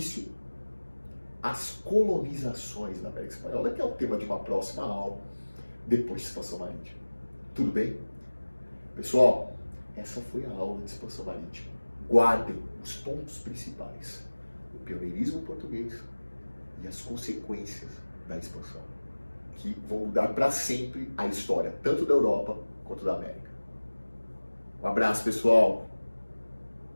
às colonizações da América Espanhola, que é o tema de uma próxima aula, depois de expansão marítima. Tudo bem? Pessoal, essa foi a aula de expansão marítima. Guardem os pontos principais: o pioneirismo português e as consequências da expansão, que vão mudar para sempre a história, tanto da Europa quanto da América. Um abraço, pessoal!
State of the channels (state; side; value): inverted; both; correlation -1.00